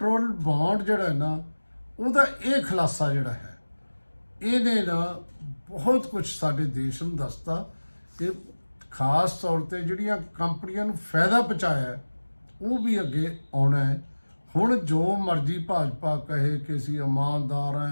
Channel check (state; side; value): inverted; both; correlation -1.00